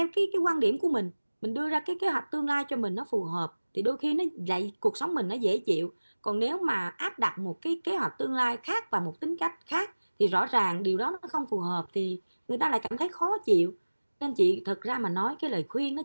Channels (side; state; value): both; inverted; correlation -1.00